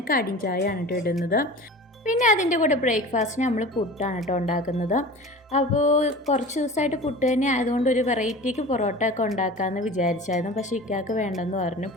കടിൻ ചായയാണ് കേട്ടോ ഇടുന്നത്. പിന്നെ അതിൻ്റെ കൂടെ ബ്രേക്ക്ഫാസ്റ്റിന് നമ്മൾ പുട്ടാണ് കേട്ടോ ഉണ്ടാക്കുന്നത്. അപ്പോൾ കുറച്ച് ദിവസമായിട്ട് പുട്ട് തന്നെ ആയതുകൊണ്ട് ഒരു വെറൈറ്റിക്ക് പൊറോട്ട ഒക്കെ ഉണ്ടാക്കാമെന്ന് വിചാരിച്ചായിരുന്നു. പക്ഷേ ഇക്കാക്ക് വേണ്ടെന്ന് പറഞ്ഞു,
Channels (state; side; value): normal; both; correlation 0.37